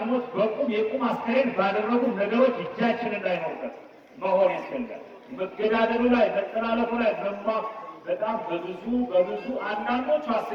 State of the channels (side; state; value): both; identical; correlation 1.00